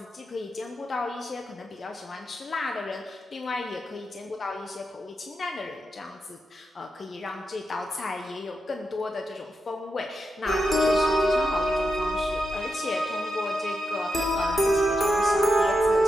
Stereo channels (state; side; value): normal; both; correlation 0.86